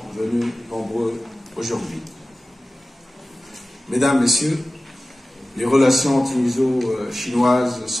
venus nombreux aujourd'hui. Mesdames, Messieurs, les relations tuniso-chinoises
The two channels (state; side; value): normal; both; correlation 0.96